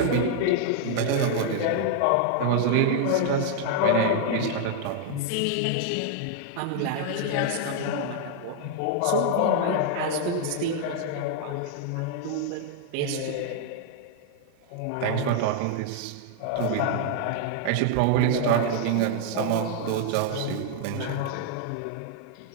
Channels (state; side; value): different; both; correlation 0.00